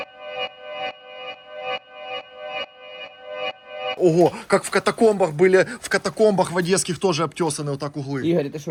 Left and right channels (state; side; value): identical; both; correlation 1.00